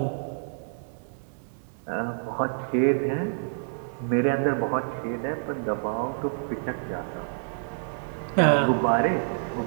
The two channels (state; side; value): silent; left; 60 dB below the other